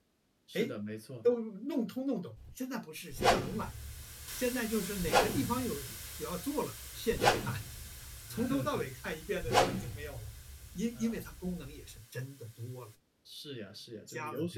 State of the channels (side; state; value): both; identical; correlation 1.00